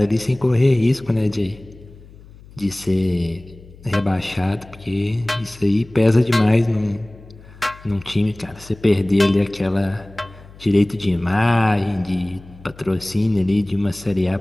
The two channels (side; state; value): left; noise; hum, 21 dB below the sound